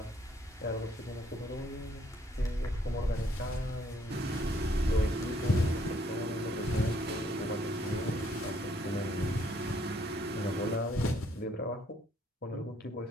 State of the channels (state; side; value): normal; both; correlation 0.67